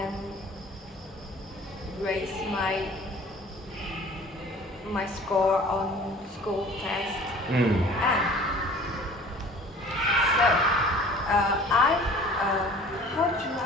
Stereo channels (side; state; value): both; normal; correlation 0.47